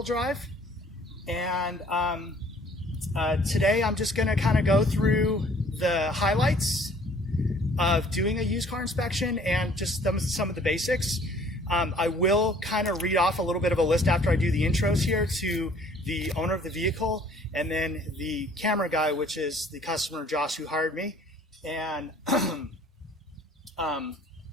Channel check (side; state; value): both; normal; correlation 0.56